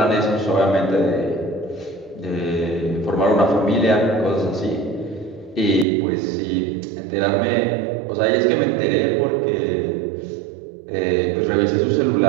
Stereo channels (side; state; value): left; drops out; at 5.9 s